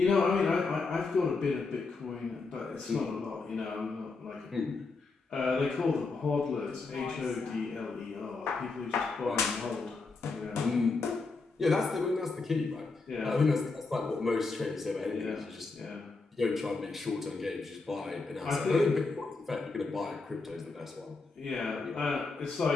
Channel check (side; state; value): right; quieter; 4.0 dB